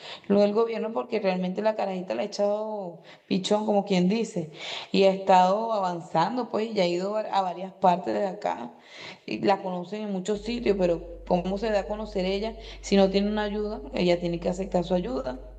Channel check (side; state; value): both; identical; correlation 1.00